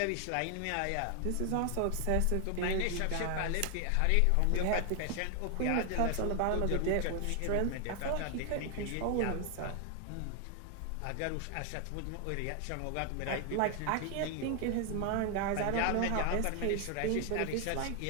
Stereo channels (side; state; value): both; different; correlation 0.00